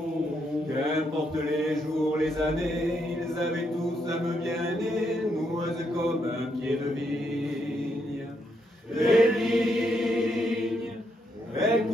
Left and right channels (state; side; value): normal; both; correlation 0.77